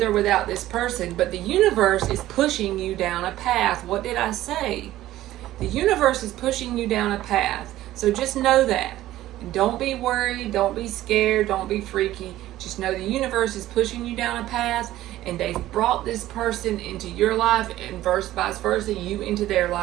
or without this person, but the universe is pushing you down a path. What did I say? The universe is pushing you down a path. So just know that. Don't be worried. Don't be scared. Don't be freaky. Just know the universe is pushing you down a path, and they've brought this person into your life and vice versa, you into their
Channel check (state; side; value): quieter; left; 14.8 dB